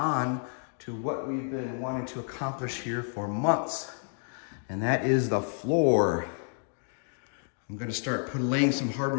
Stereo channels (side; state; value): right; silent; 58 dB below the other